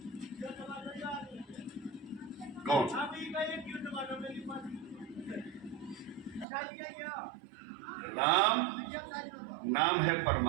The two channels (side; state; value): left; drops out; at 6.5 s